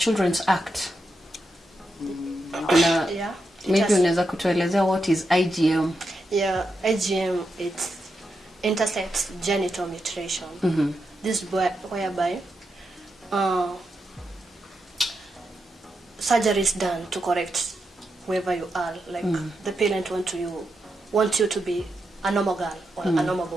Act. Yeah. Maybe unaweza kutuelezea what is IGM? Yeah, IGM, it's intersex genital mutilation. This is whereby surgery is done to correct whoever you are. Like the parent want you to be a normal girl or a normal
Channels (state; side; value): normal; both; correlation 0.86